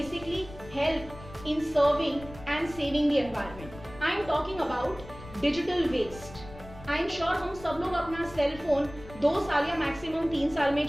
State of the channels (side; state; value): left; noise; rumble, 17 dB below the sound